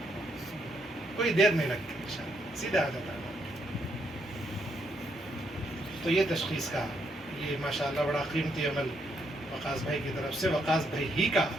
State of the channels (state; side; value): normal; both; correlation 0.76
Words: کوئی دیر نہیں لگتی، انشاءاللہ سیدھا آ جاتا ہے۔ تو یہ تشخیص کا، یہ ماشاءاللہ بڑا قیمتی عمل وقاص بھائی کی طرف سے، وقاص بھائی ہی کا